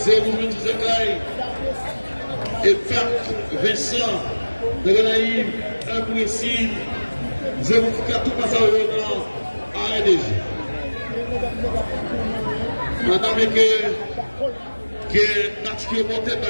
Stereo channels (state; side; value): inverted; both; correlation -1.00